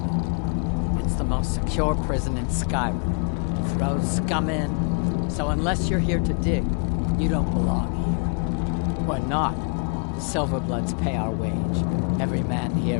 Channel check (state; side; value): quieter; right; 37.7 dB